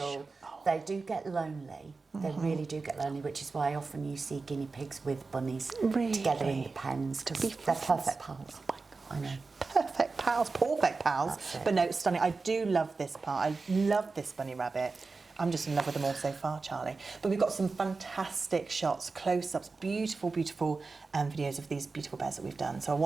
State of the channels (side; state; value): left; quieter; 4.1 dB